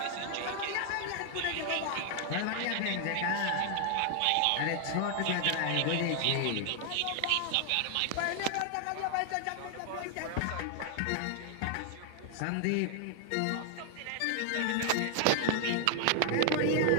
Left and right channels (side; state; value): both; different; correlation 0.00